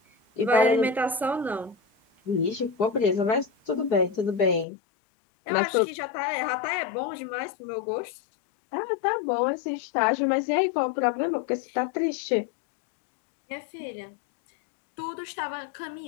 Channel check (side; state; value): right; drops out; at 4.7 s